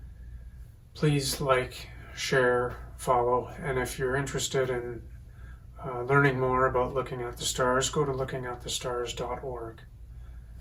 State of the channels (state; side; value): identical; both; correlation 1.00